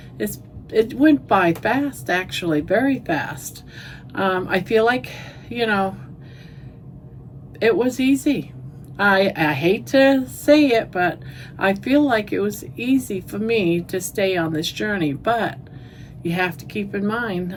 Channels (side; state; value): both; identical; correlation 1.00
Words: went by fast, actually, very fast. I feel like, you know, it was easy. I hate to say it, but I feel like it was easy for me to stay on this journey. But you have to keep in